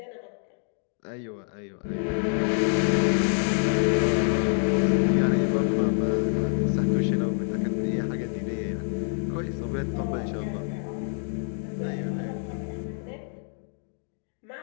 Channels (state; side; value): silent; right; 56 dB below the other